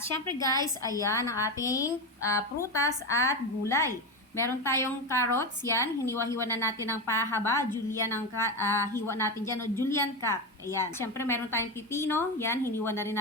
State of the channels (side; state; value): both; normal; correlation 0.16